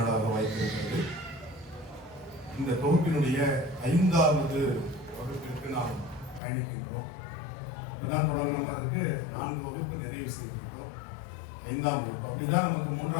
வாய்ப்பிருக்கிறது. இந்த தொகுப்பினுடைய 5வது வகுப்பிற்கு நாம் பயணிக்கின்றோம். இப்பதான் தொடங்கினதற்கு 4 வகுப்பு நிறைவு செய்திருக்கிறோம். 5ஆம் வகுப்பு அப்படின்னா நமக்கு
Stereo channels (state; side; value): drops out; right; at 6.4 s